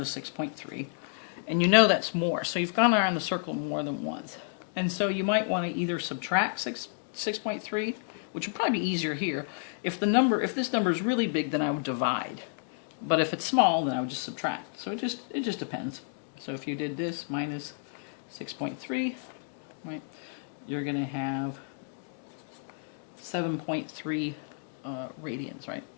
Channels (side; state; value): right; silent; digital silence